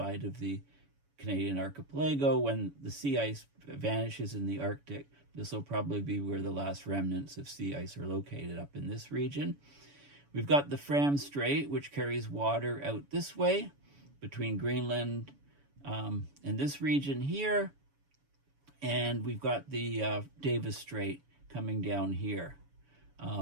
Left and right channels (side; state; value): left; late; 7.1 ms